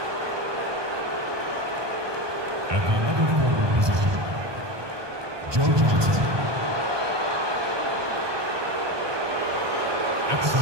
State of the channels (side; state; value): left; late; 1.2 ms